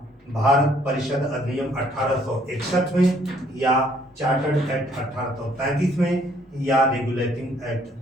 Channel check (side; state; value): both; normal; correlation 0.64